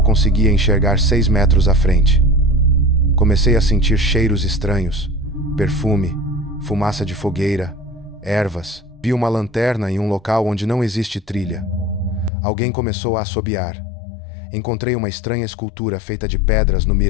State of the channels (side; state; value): right; drops out; at 12.3 s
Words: conseguia enxergar 6 metros à frente. Comecei a sentir cheiros estranhos, perfume, fumaça de fogueira, ervas. Vi uma lanterna em um local onde não existe trilha. Alguém começou a assobiar. Encontrei uma estranha escultura feita de pedras no